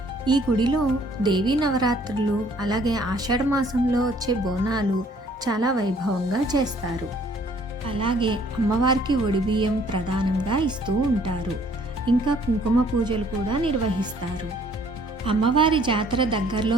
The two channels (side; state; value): both; normal; correlation 0.60